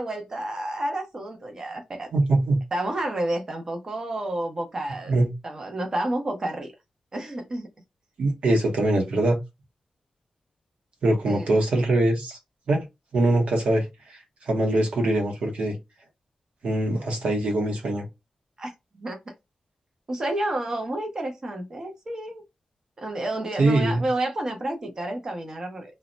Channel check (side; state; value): both; normal; correlation 0.88